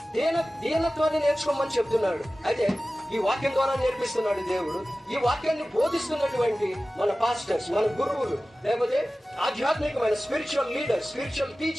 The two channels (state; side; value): normal; both; correlation 0.96